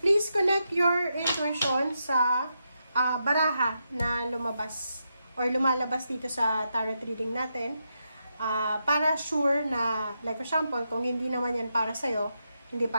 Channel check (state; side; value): inverted; both; correlation -0.84